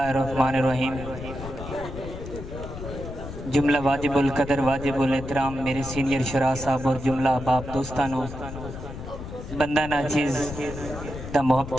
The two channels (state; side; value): noise; left; rumble, 10 dB below the sound